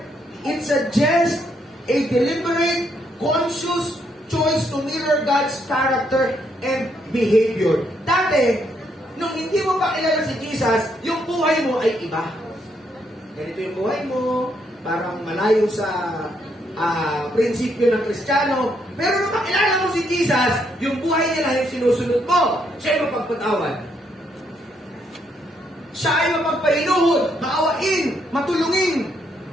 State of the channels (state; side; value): normal; both; correlation 0.74